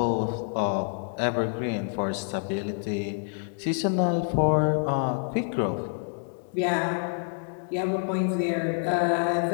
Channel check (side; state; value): right; silent; 60 dB below the other